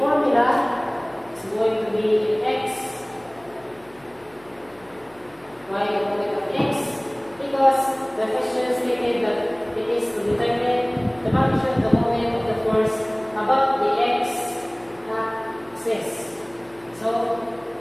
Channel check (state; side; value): noise; left; hum, 28 dB below the sound